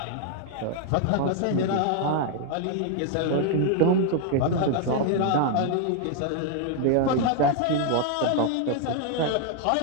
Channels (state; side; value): different; both; correlation 0.00